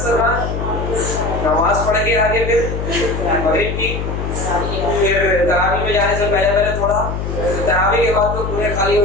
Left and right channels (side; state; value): left; noise; hum, 4 dB below the sound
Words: نماز پڑھ کے آگے پھر مغرب کی، پھر تراویح میں جانے سے پہلے تھوڑا، تراویح کے بعد تو پورے خالی ہو